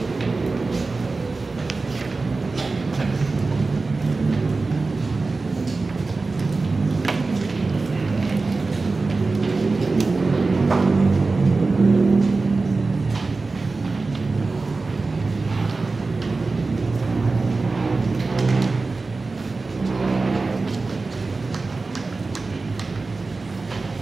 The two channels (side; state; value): left; quieter; 3.8 dB